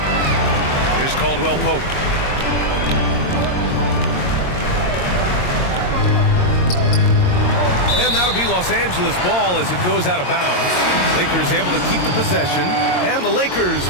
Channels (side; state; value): right; late; 22 ms